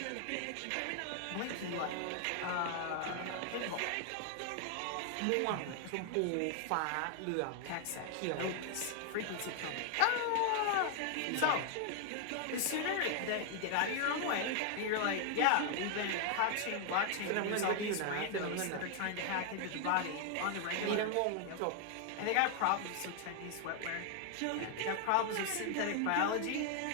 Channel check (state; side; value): different; both; correlation 0.00